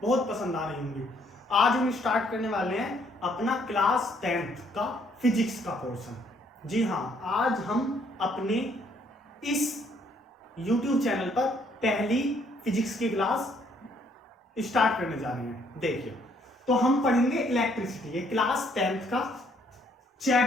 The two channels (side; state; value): both; normal; correlation 0.67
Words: बहुत पसंद आ रही होंगी। आज हम स्टार्ट करने वाले हैं अपना क्लास 10th का फिजिक्स का पोर्शन। जी हाँ, आज हम अपने इस यूट्यूब चैनल पर पहली फिजिक्स की क्लास स्टार्ट करने जा रहे हैं। देखिए, तो हम पढ़ेंगे इलेक्ट्रिसिटी। ये क्लास 10th का